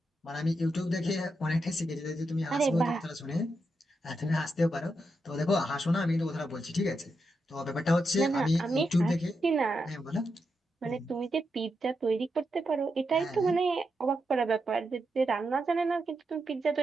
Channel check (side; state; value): both; normal; correlation 0.85